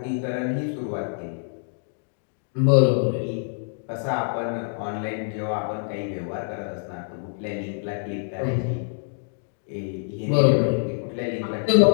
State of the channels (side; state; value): right; silent; digital silence